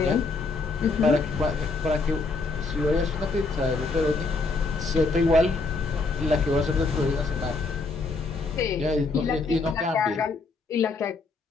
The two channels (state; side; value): quieter; right; 3.8 dB